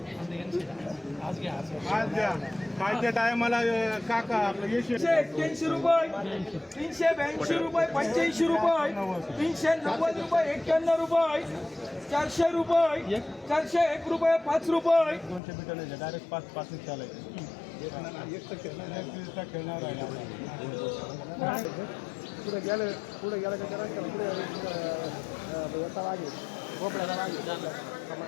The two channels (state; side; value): drops out; right; at 15.4 s